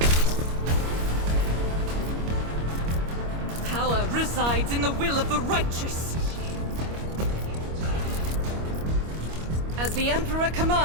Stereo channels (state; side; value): late; left; 25 ms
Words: Power resides in the will of the righteous. As the Emperor